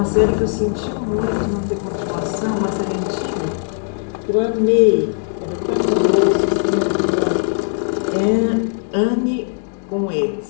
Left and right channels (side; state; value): right; silent; 66 dB below the other